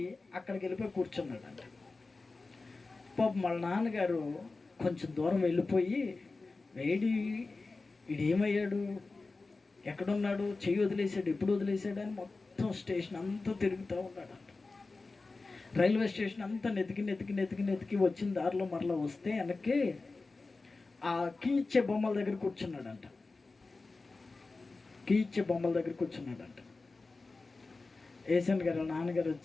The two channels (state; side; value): quieter; right; 3.7 dB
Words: అక్కడికి వెళ్ళిపోయి కూర్చున్నాడంట. పాపం వాళ్ళ నాన్నగారు కొంచెం దూరం వెళ్ళిపోయి, వీడేమయ్యాడు, ఎక్కడున్నాడు, చెయ్యి వదిలేసాడు, ఎప్పుడు వదిలేసాడు అని మొత్తం స్టేషన్ అంతా తిరుగుతూ ఉన్నాడంట. రైల్వే స్టేషన్ అంతా నెతికి వచ్చిన దారిలో మరలా వస్తే వెనక్కి ఆ కీ ఇచ్చే బొమ్మల దగ్గర కూర్చున్నాడంట. కీ ఇచ్చే బొమ్మల దగ్గర కూర్చున్నాడంట. ఏసన్ గారు నాన్నగారు